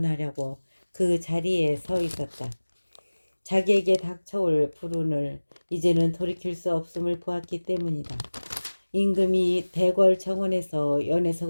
그 자리에 서 있었다. 자기에게 닥쳐올 불운을 이제는 돌이킬 수 없음을 보았기 때문이다. 임금이 대궐 정원에서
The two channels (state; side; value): inverted; both; correlation -1.00